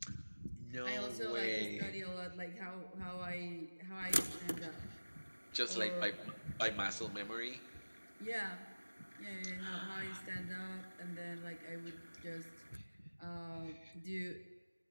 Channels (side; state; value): both; inverted; correlation -1.00